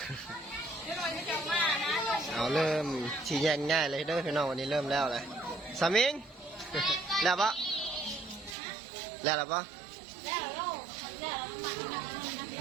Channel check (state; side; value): drops out; left; at 8.6 s